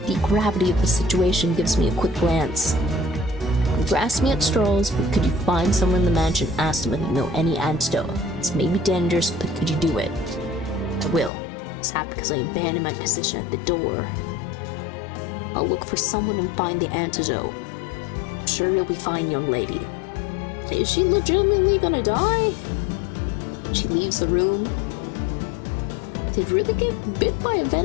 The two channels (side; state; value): right; drops out; at 11.3 s